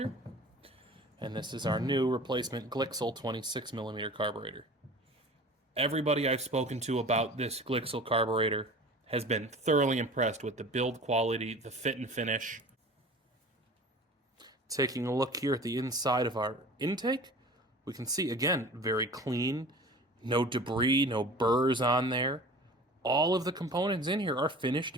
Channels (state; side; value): normal; both; correlation 0.41